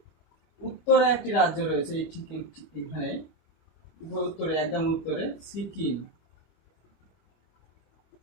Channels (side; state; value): right; late; 25 ms